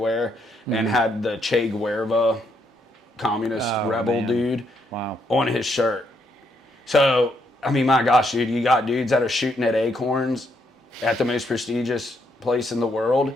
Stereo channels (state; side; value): normal; both; correlation 0.75